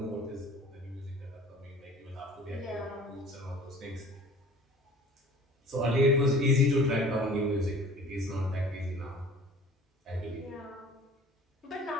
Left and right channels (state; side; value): normal; both; correlation 0.47